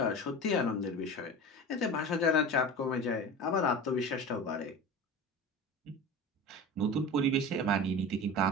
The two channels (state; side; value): normal; both; correlation 0.32